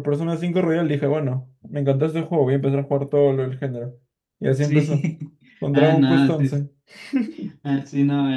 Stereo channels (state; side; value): identical; both; correlation 1.00